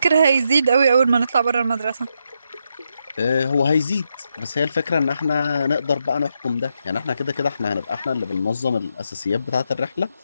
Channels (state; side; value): inverted; both; correlation -0.81